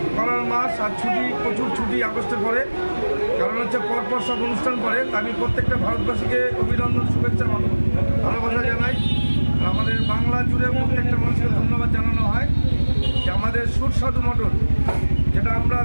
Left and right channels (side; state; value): both; inverted; correlation -1.00